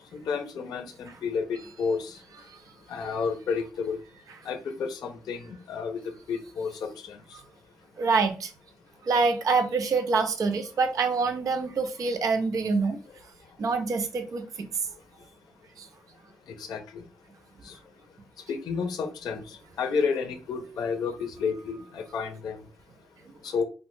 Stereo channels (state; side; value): normal; both; correlation 0.65